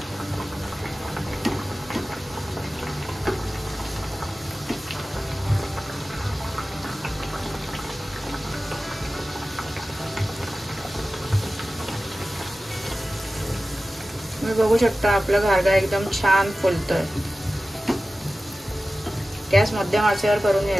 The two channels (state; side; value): normal; both; correlation 0.95